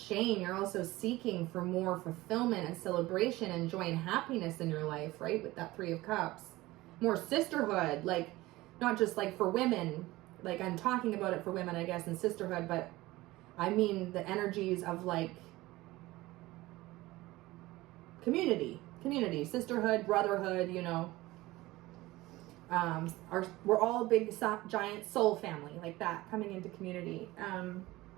You're also seeking for more fulfillment and celebration and joy and happiness in your life, right? With that Three of Cups. More sisterhood, like not just like for women, like I'm talking about it for women, I guess, and sisterhood, but I mean the energies of like community, sisterhood, brotherhood, you know. We're all a big giant soul family, like that, coming into community.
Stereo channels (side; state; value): left; quieter; 18.8 dB